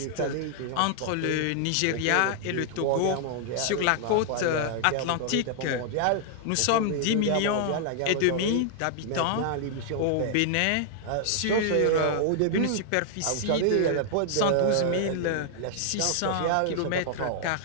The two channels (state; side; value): different; both; correlation -0.01